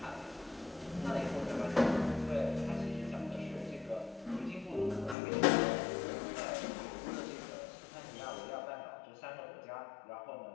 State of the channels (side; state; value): right; drops out; at 5.2 s